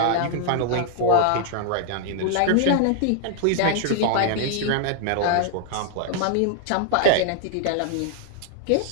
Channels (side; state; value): both; different; correlation 0.00